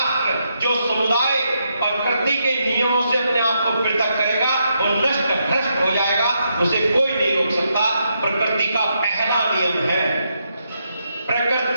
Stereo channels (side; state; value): both; inverted; correlation -0.80